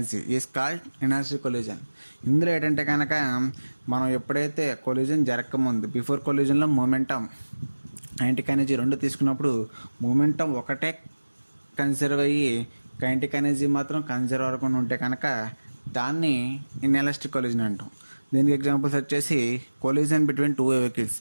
is called inelastic collision. ఇందులో ఏంటంటే కనుక మనం ఎప్పుడైతే కొల్యూజన్ జరగకముందు బిఫోర్ కొల్యూజన్లో మొమెంటమ్ కైనెటిక్ ఎనర్జీ 2 తీసుకున్నప్పుడు మొమెంటం ఒకటే కన్సర్వ్ అయ్యి కైనెటిక్ ఎనర్జీ మాత్రం కన్సర్వ్ అవ్వకుండా ఉంటే కనుక దాన్ని ఇన్ఎలాస్టిక్ కొల్యూజన్ అంటాం. దీనికి ఎగ్జాంపుల్స్ వచ్చేసి కొల్యూజన్ బిట్వీన్ 2 వెహికల్స్,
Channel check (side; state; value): both; inverted; correlation -1.00